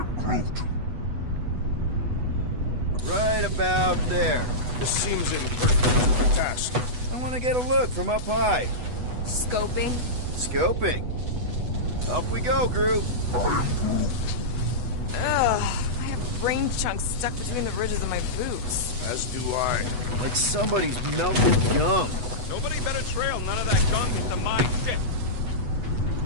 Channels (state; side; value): late; left; 8.1 ms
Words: Groot. Right about there. This seems imperfect task. I want to get a look from up high. Scoping. Scoping. Up we go, Groot. Ugh. I have brain chunks stuck between the ridges of my boots. As do I. Like somebody's melted gum. Nobody better trail none of that gunk into my shit.